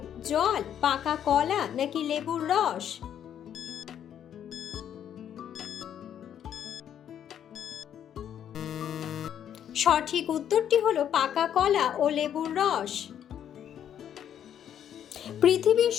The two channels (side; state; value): right; quieter; 9.7 dB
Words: জল, পাকা কলা নাকি লেবুর রস। সঠিক উত্তরটি হলো পাকা কলা ও লেবুর রস। পৃথিবীর